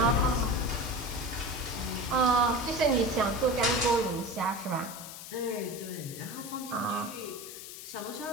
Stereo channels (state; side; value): noise; left; hiss, 12 dB below the sound